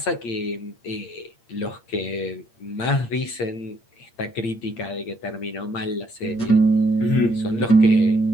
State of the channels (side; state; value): right; late; 8.7 ms